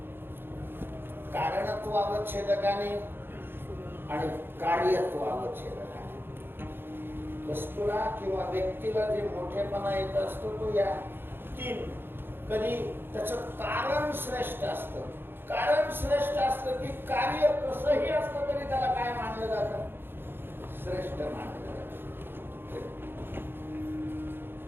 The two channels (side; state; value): left; late; 0.10 ms